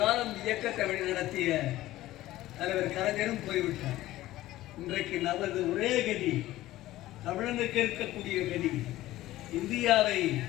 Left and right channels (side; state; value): right; quieter; 15.8 dB